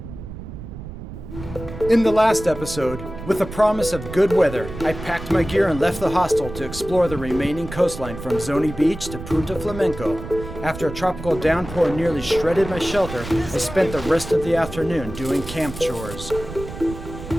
In the last episode, with the promise of good weather, I packed my gear and left the hostel to explore the remaining coastline from Zoni Beach to Punta Flamenco. After a tropical downpour nearly shredded my shelter, I spent the rest of the afternoon doing camp chores.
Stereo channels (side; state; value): right; noise; rumble, 11 dB below the sound